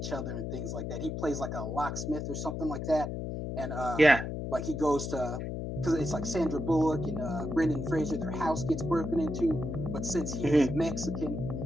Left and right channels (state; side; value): noise; left; hum, 4 dB below the sound